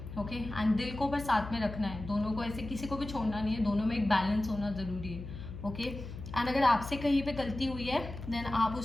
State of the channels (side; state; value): left; noise; hum, 10 dB below the sound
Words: ओके, एंड दिल को पर साथ में रखना है, दोनों को ऐसे किसी को भी छोड़ना नहीं है, दोनों में एक बैलेंस होना ज़रूरी है। ओके, एंड अगर आपसे कहीं पे गलती हुई है देन आप